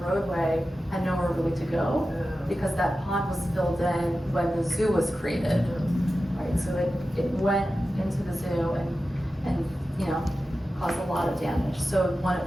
roadway had nowhere really to go, because that pond was filled in when the zoo was created. Right, so it went into the zoo and caused a lot of damage. So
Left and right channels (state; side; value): normal; both; correlation 0.93